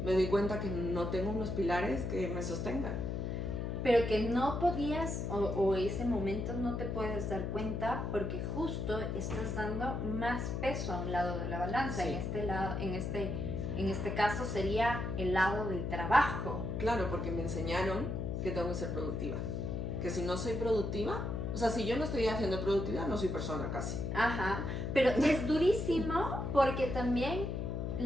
me doy cuenta que no tengo unos pilares que me sostengan. Pero que no podías, o ese momento no te puedes dar cuenta porque justo estás dando más peso a un lado de la balanza. En este caso sería el lado del trabajo. Claro, porque me enseñaron que tengo que ser productiva. Que si no soy productiva, o sea, si yo no estoy haciendo productividad, no soy persona casi. Pero es durísimo porque también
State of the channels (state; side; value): noise; left; hum, 2 dB below the sound